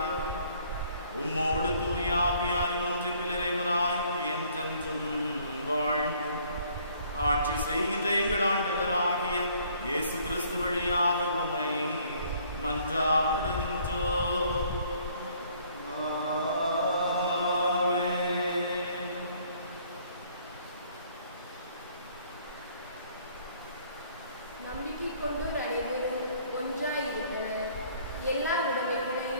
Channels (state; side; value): inverted; both; correlation -0.60